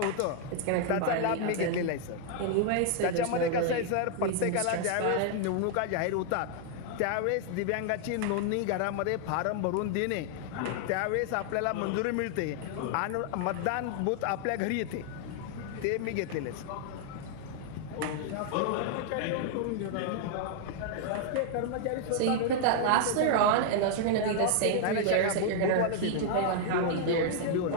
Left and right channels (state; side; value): different; both; correlation 0.00